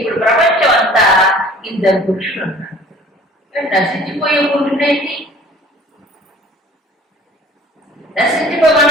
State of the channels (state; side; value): normal; both; correlation 0.49